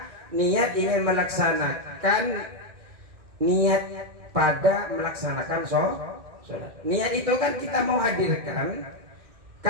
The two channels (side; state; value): left; late; 2.1 ms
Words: niat ingin melaksanakan, niat pada melaksanakan sholat. Niat itu kan kita mau hadirkan